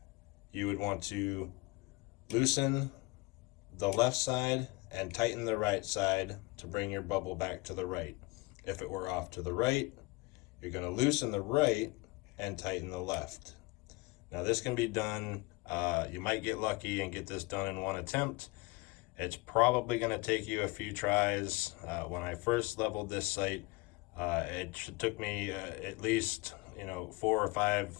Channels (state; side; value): quieter; right; 24.5 dB